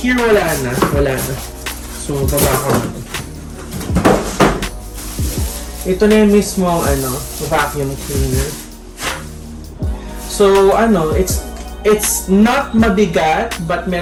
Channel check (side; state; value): both; identical; correlation 1.00